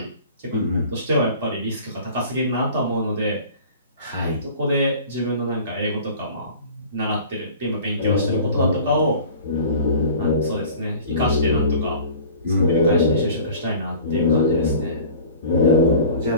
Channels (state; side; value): inverted; both; correlation -0.43